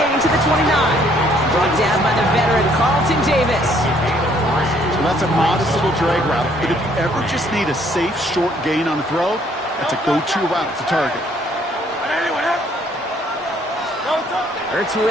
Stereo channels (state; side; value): normal; both; correlation 0.64